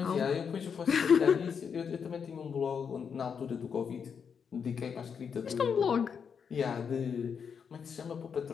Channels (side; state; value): right; quieter; 6.7 dB